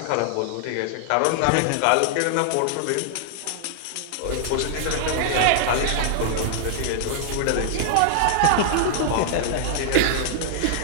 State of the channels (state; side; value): different; both; correlation -0.01